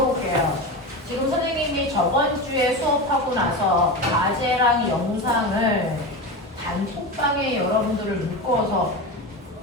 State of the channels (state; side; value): normal; both; correlation 0.23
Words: 지금 선생님이 저번 주에 수업하고 나서 과제랑 영상을 단톡방에 여러분들을 묶어서